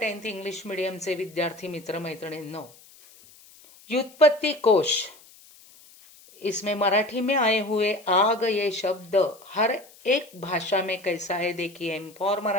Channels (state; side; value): noise; left; hiss, 24 dB below the sound